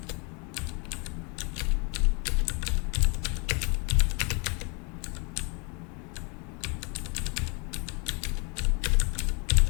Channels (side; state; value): right; quieter; 33.3 dB